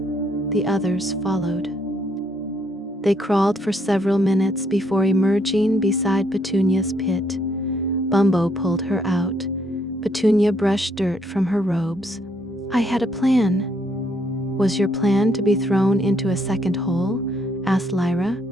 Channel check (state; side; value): normal; both; correlation 0.71